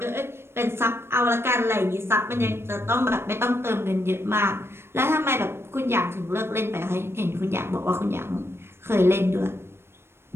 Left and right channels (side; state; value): left; late; 0.12 ms